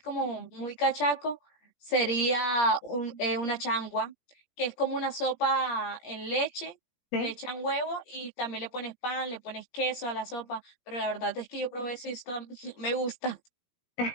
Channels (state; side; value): late; right; 17 ms